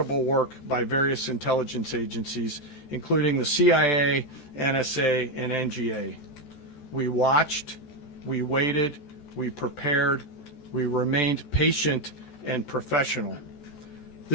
work by various intelligence agencies, including the CIA, NSA, and NGA. We watched, we waited, we prepared, we remained patient and professional.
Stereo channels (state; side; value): late; right; 14 ms